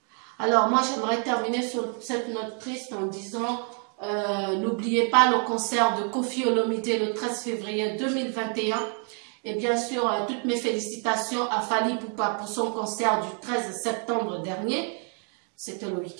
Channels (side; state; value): left; quieter; 35.8 dB